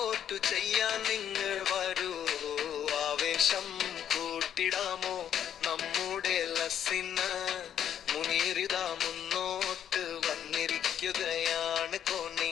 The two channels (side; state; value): right; quieter; 9.7 dB